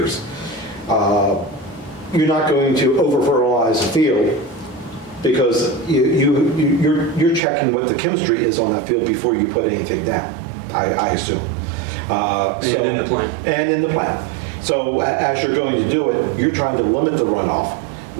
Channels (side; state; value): left; drops out; at 7.4 s